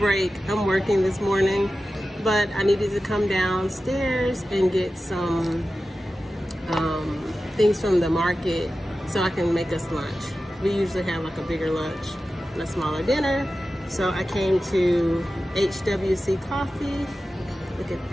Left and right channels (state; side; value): normal; both; correlation 0.94